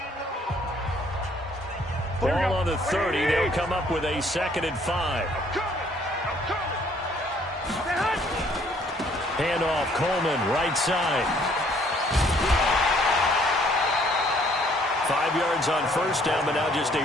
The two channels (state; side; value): normal; both; correlation 0.62